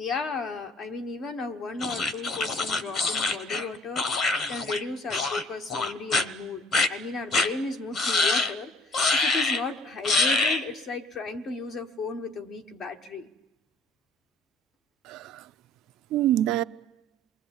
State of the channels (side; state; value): both; normal; correlation 0.55